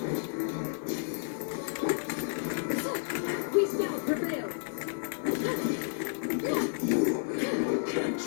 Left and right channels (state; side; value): silent; right; digital silence